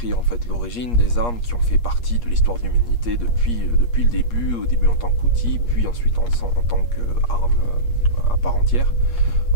en fait l'origine des armes qui ont fait partie de l'histoire de l'humanité depuis le début, au début en tant qu'outil, puis ensuite en tant qu'arme à part entière.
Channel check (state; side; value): late; right; 8.4 ms